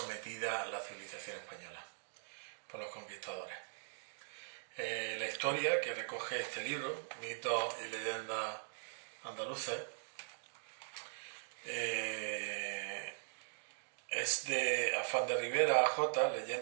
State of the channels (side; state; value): left; silent; digital silence